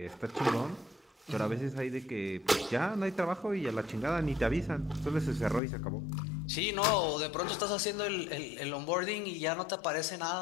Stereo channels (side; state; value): right; drops out; at 5.6 s